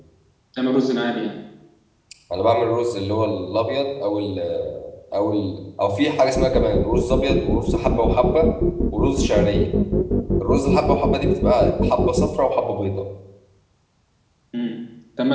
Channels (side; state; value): both; identical; correlation 1.00